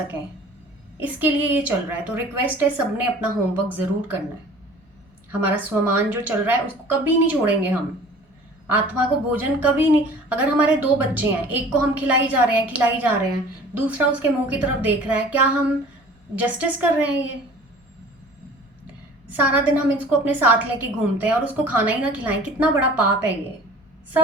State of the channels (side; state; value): both; normal; correlation 0.46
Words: इसके लिए ये चल रहा है। तो रिक्वेस्ट है, सबने अपना होमवर्क जरूर करना है। हमारा स्वमान जो चल रहा है उसको कभी नहीं छोड़ेंगे हम, आत्मा को भोजन कभी नहीं। अगर हमारे 2 बच्चे हैं, एक को हम खिलाई जा रहे हैं, दूसरा उसके मुंह की तरफ देख रहा है, क्या हम जस्टिस कर रहे हैं? ये सारा दिन हम इसको अपने साथ लेके घूमते हैं और उसको खाना ही ना खिलाएं, कितना बड़ा पाप है ये।